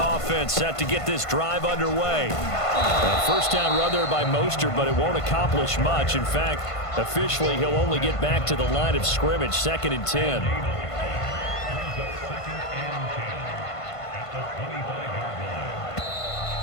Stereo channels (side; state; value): right; late; 1.5 ms